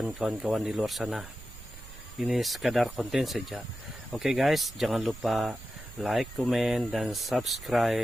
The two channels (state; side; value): noise; right; rumble, 16 dB below the sound